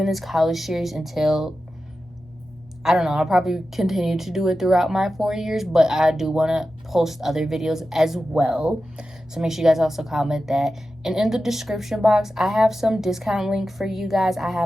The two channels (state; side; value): normal; both; correlation 0.92